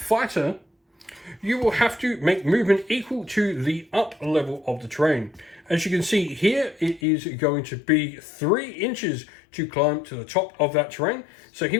You will have to make movement equal to the up level of the terrain. As you can see here, it is going to be 3 inches to climb to the top of that terrain. So he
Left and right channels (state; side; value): drops out; right; at 7.0 s